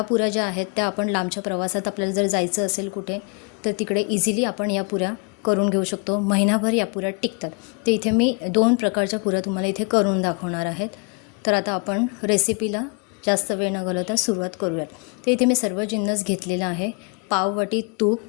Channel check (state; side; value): quieter; right; 35.2 dB